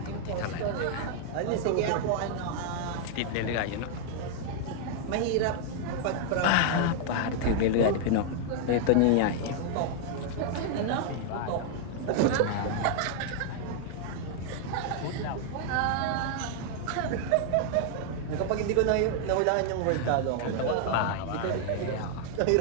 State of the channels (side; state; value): both; different; correlation 0.00